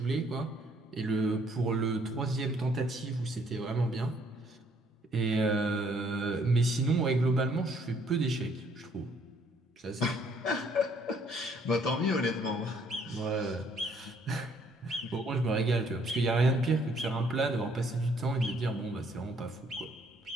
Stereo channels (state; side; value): normal; both; correlation 0.65